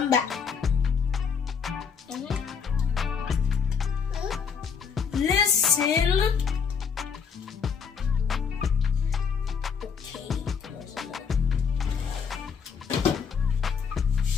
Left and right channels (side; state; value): right; quieter; 6.3 dB